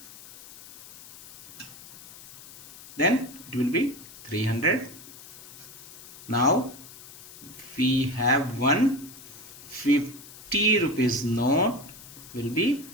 then it will be 300. Now we have 150 rupees note, will be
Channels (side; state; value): left; noise; hiss, 17 dB below the sound